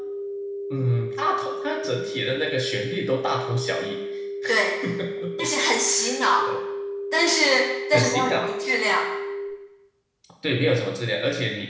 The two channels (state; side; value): identical; both; correlation 1.00